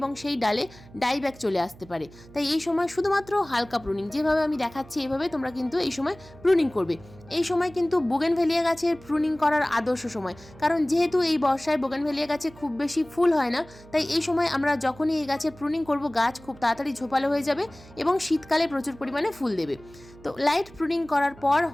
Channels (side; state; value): right; noise; hum, 21 dB below the sound